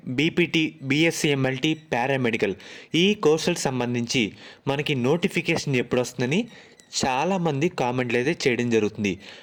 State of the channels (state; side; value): identical; both; correlation 1.00